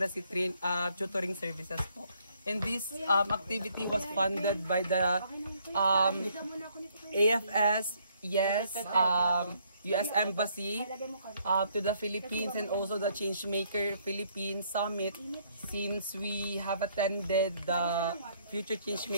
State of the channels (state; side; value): inverted; both; correlation -0.67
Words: tutoring services po. And this activity was funded by the AFS, yes, US Embassy to the Philippines, and also the Changemaker Philippines Summit, since we have attended the Future